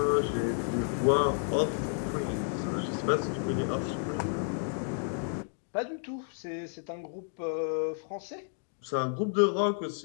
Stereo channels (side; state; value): right; silent; digital silence